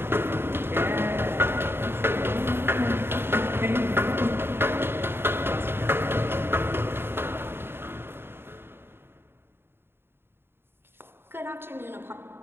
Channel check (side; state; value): left; late; 0.11 ms